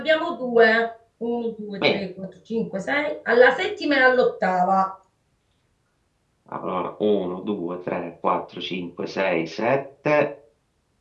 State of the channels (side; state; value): both; identical; correlation 1.00